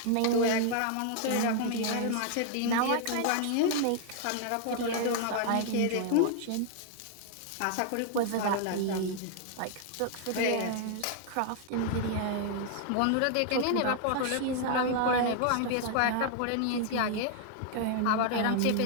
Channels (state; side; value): different; both; correlation 0.00